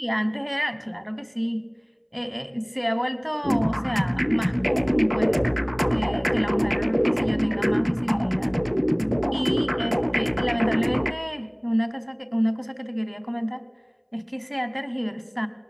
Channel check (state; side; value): identical; both; correlation 1.00